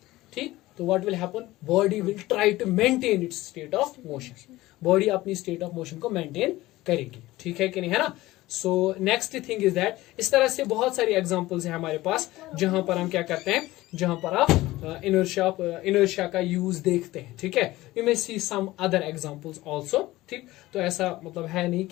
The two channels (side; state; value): right; quieter; 17.8 dB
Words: ठीक, तो what will happen, body will try to maintain its state of motion, body अपनी स्टेट ऑफ मोशन को मेंटेन करेगी, ठीक है कि नहीं, है ना। So next thing is that, इस तरह से बहुत सारी एग्जांपल्स हैं हमारे पास जहां पर हम क्या करते हैं, जहां पर आप इनर्शिया का यूज देखते हैं, ठीक है। You may see some other examples also, ठीक। तो ऐसा मतलब है नहीं